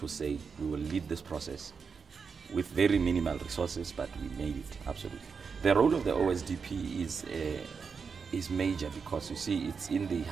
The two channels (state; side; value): quieter; left; 5.6 dB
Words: say we will lead this process with very minimal resources, but we made it, absolutely. The role of the OSDP is major because, you see, it's in the